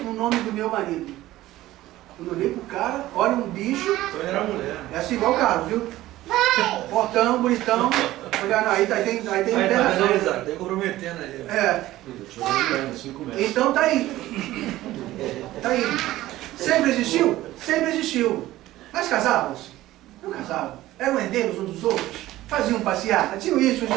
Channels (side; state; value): left; quieter; 15.8 dB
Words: no nome do meu marido. Quando eu olhei pro cara, olha um bicho. Então ele era mulher. É assim igual o Carlos, viu? Portão, bonitão. Olha, não, aí tem internação. Tem comprometendo aí. É. Então tá aí. Tá aí. Sempre existiu? Sempre existiu. Mas casavam-se? Não casavam. Eram herdeiros uns dos outros. Faziam passeata. Tinham isso,